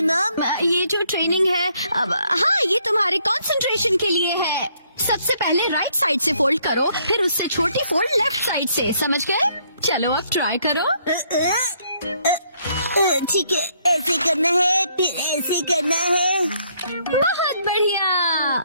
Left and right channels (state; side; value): inverted; both; correlation -0.68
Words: मॉम? ये जो ट्रेनिंग है अब, हाँ ये तुम्हारे कंसंट्रेशन के लिए है। सबसे पहले राइट साइड से फोल्ड करो, फिर उससे छोटी फोल्ड लेफ्ट साइड से। समझ गए? चलो अब ट्राई करो। ठीक है, ऐसे करना है, फिर ऐसे करना है। बहुत बढ़िया।